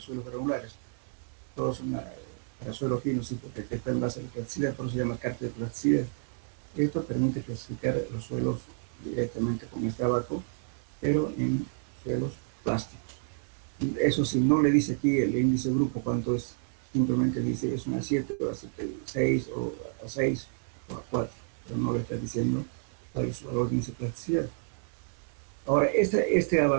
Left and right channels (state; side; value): silent; left; 58 dB below the other